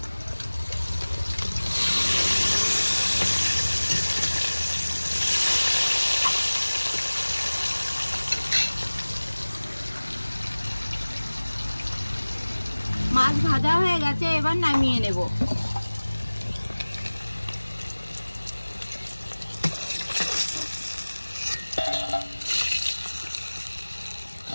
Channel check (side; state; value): both; inverted; correlation -1.00